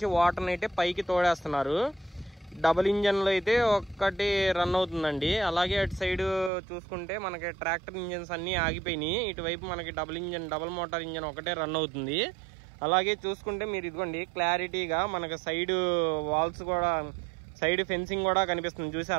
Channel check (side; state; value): left; drops out; at 6.5 s